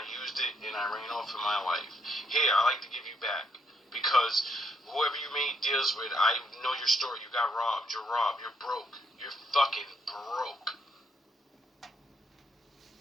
used it, and I ran off in my life. Here, I like to give you back, because whoever you made deals with, I know your story, you got robbed, you're broke, you're fucking broke.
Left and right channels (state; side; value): normal; both; correlation 0.73